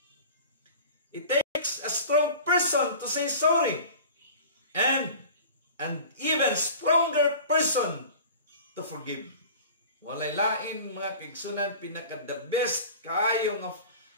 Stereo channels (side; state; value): both; inverted; correlation -0.39